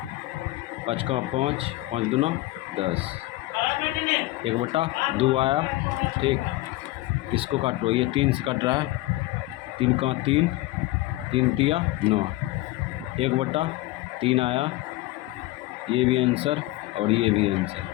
5 का 5, 5 दूना 10, 1/2 आया। ठीक, इसको काटो। ये 3 से कट रहा है, 3 का 3, 3 तिया 9, 1/3 आया। ये भी आंसर और ये भी आंसर।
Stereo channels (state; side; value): quieter; right; 18.3 dB